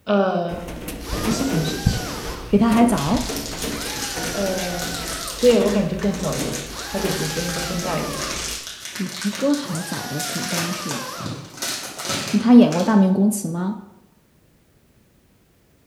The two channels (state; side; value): identical; both; correlation 1.00